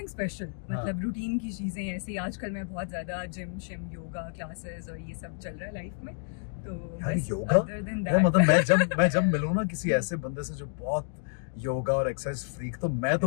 स्पेशल, मतलब रूटीन की चीजें ऐसे। आजकल मैं बहुत ज्यादा जिम शिम योगा क्लासेस और ये सब चल रहा है लाइफ में। तो यार योगा है, मतलब मैं जब मिलूँ ना किसी ऐसे बंदे से जो बहुत योगा और एक्सरसाइज फ्रीक, तो मैं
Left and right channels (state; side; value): silent; right; 58 dB below the other